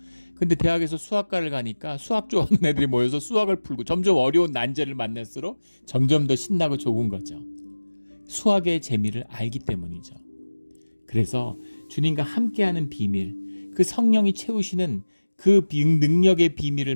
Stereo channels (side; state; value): both; inverted; correlation -1.00